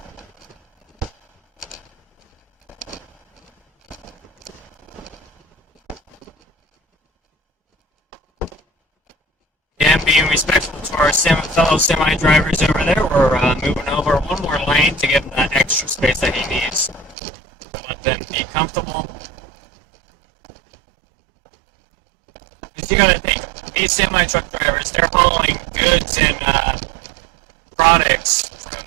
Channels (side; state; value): left; drops out; at 17.2 s